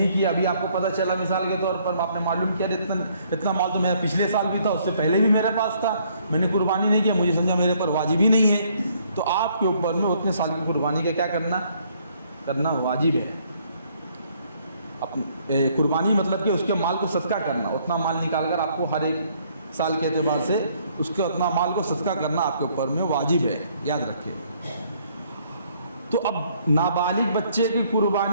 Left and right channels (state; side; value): inverted; both; correlation -0.65